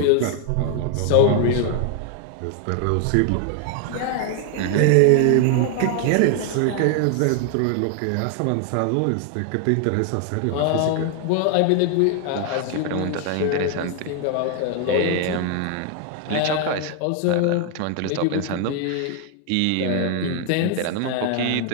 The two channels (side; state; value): both; different; correlation 0.00